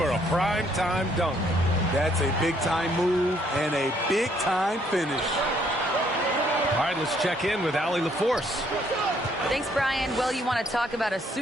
a prime-time dunk. That's a big-time move and a big-time finish. All right, let's check in with Allie LaForce. Thanks, Brian. Well, you want to talk about a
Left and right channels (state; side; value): normal; both; correlation 0.67